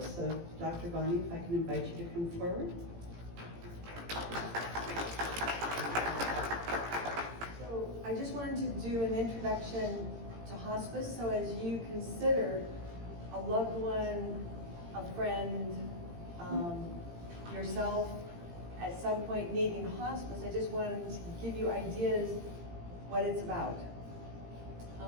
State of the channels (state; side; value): late; left; 18 ms